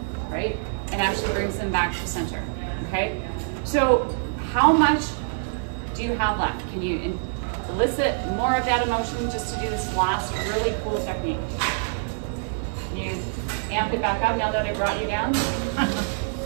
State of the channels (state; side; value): silent; left; digital silence